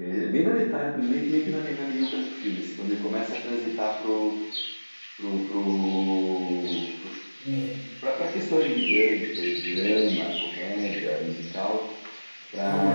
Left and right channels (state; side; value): inverted; both; correlation -1.00